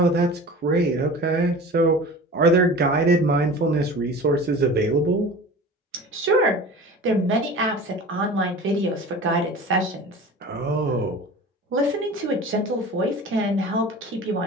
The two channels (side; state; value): both; normal; correlation 0.38